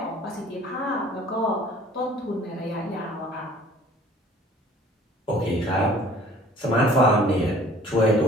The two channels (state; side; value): normal; both; correlation 0.52